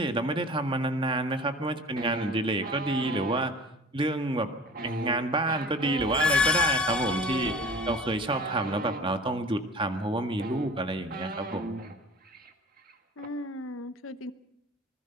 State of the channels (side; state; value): both; normal; correlation 0.42